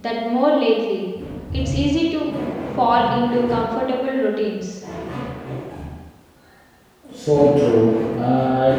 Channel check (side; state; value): both; identical; correlation 1.00